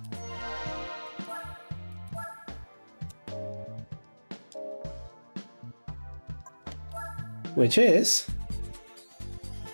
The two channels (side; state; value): both; inverted; correlation -1.00